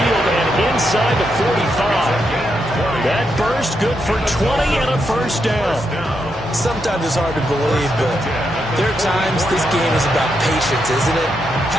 and inside the 45. That burst good for 20 and a first down. Sometimes it's hard to believe, but there are times this game is about patience, isn't it?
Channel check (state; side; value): normal; both; correlation 0.82